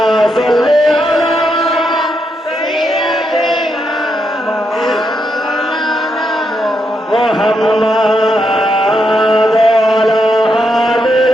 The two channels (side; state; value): both; normal; correlation 0.81